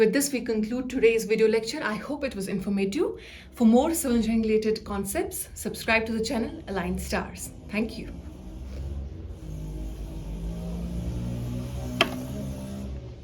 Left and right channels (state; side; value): identical; both; correlation 1.00